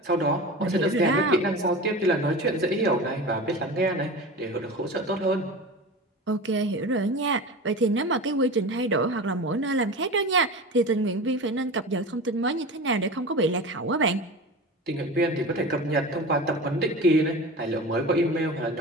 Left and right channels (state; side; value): normal; both; correlation 0.31